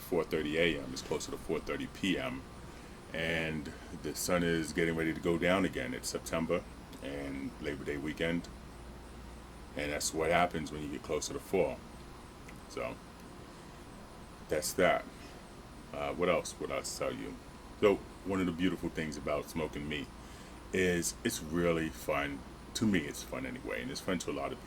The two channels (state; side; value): identical; both; correlation 1.00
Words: a.m. It's closer to 4:30 p.m. And the sun is getting ready to go down again. It's September and Labor Day weekend. And that's what happens when you get closer to fall. So that's that. What else would I tell you? So one of the beautiful things about smoking meat is it's really fun. To me, it's fun anyway. And it's fun to a lot of